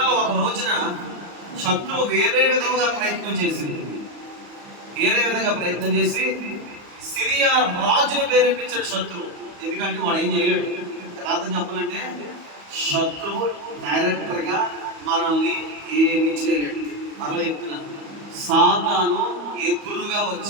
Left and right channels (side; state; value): left; late; 34 ms